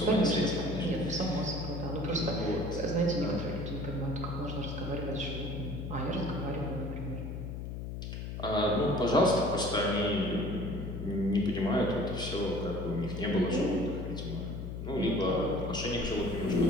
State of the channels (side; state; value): left; noise; hum, 6 dB below the sound